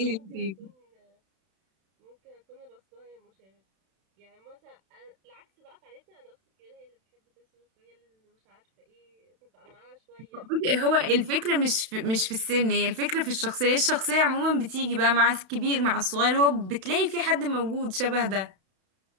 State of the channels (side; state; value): left; late; 32 ms